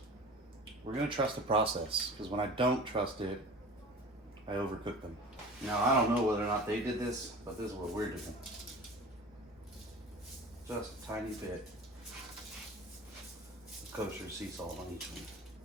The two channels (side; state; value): both; normal; correlation 0.38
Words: process, because when I don't trust it, I overcook them. Now, I don't know whether or not they did this, but this is what we're doing. Just a tiny bit of kosher sea salt on each one.